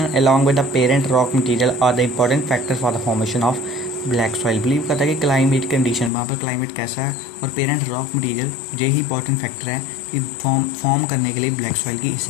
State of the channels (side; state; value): right; drops out; at 6.1 s